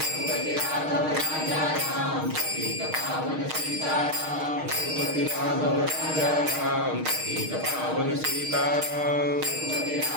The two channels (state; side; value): late; left; 6.5 ms